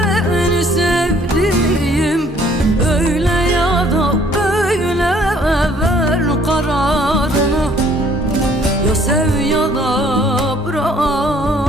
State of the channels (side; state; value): both; normal; correlation 0.60